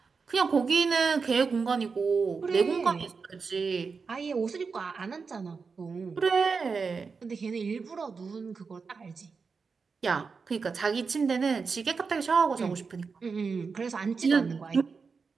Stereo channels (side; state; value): left; quieter; 5.0 dB